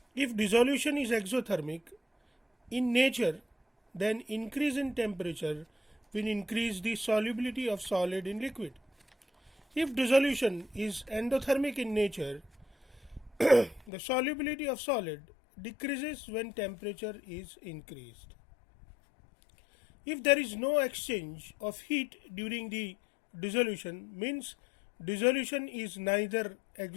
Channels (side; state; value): right; drops out; at 13.9 s